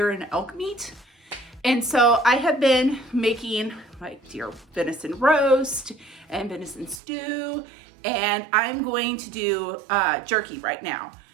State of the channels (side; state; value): left; drops out; at 7.0 s